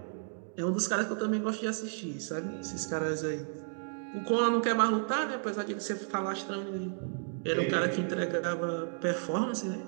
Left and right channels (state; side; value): silent; left; 56 dB below the other